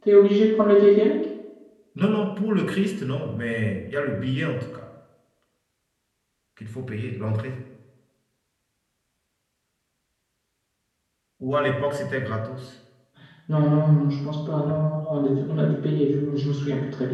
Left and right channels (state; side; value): identical; both; correlation 1.00